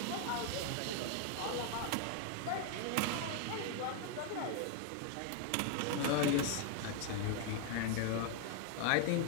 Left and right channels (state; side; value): different; both; correlation 0.00